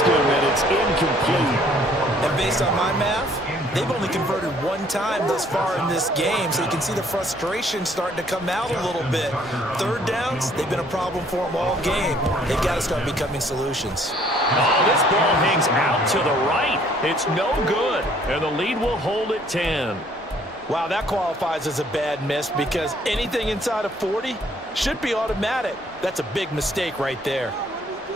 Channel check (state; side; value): normal; both; correlation 0.61